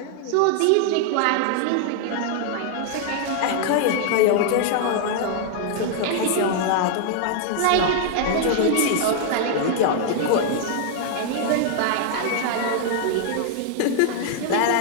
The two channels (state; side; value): different; both; correlation 0.00